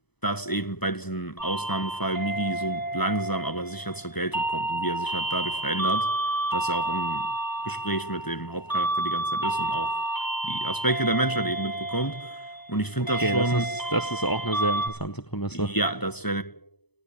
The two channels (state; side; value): late; right; 0.98 ms